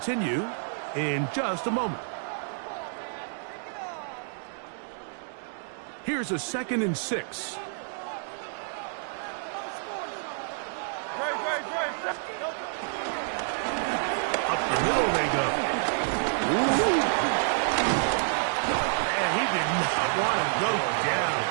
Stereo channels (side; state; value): left; silent; digital silence